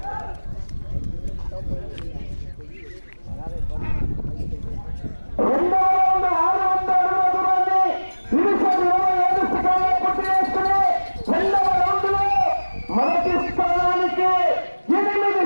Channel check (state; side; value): inverted; both; correlation -1.00